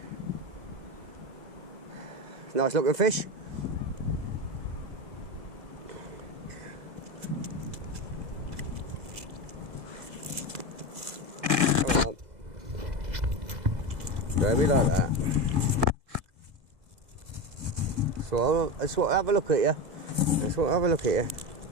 Nice looking fish. Come on. Don't be like that. So I just want to have a look at you. I just want to have a look at you.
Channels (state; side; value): late; left; 2.1 ms